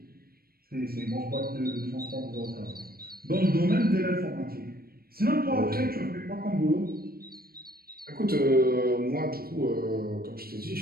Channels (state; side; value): late; left; 0.44 ms